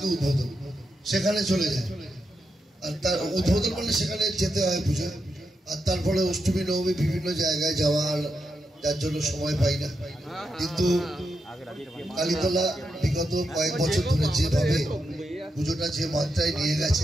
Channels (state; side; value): normal; both; correlation 0.85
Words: উদ্বোধন, সেখানে চলে যায়। আর তার উদ্বোধন করলে সেখানে যেতে হয় পুজো, আর তারপরে অষ্টমী নবমী বিভিন্ন জায়গায় যাওয়ার, যার জন্য সময় পাই না। কিন্তু কালীতলা বিগত কয়েক বছর ধরে যেভাবে পুজোটা যে মাত্রায় নিয়ে